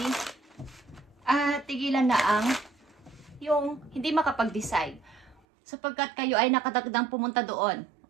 At tigilan na ang yung hindi makapag-decide, sapagkat kayo ay nakadagdang pumunta doon.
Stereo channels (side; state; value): left; drops out; at 5.4 s